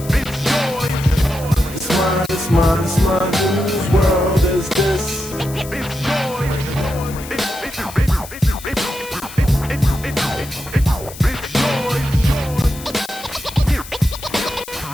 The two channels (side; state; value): left; noise; hiss, 15 dB below the sound